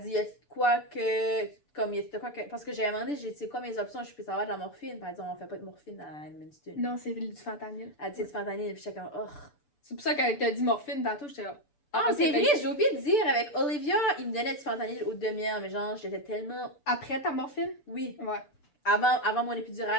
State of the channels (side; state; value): right; late; 6.8 ms